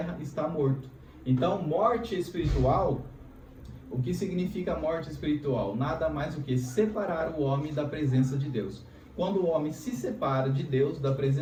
está morto. Então, morte espiritual, o que significa morte espiritual? Nada mais do que separar o homem da presença de Deus. Quando o homem se separa de Deus, da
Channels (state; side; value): identical; both; correlation 1.00